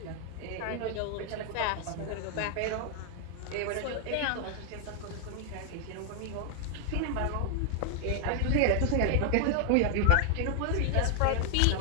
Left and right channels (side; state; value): both; different; correlation 0.00